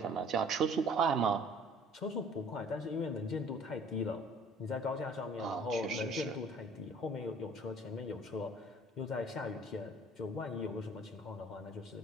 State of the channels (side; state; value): both; normal; correlation 0.52